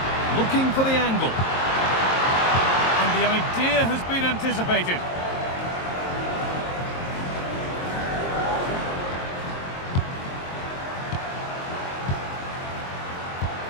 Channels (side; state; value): right; late; 23 ms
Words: Looking for the angle. And the idea has been anticipated.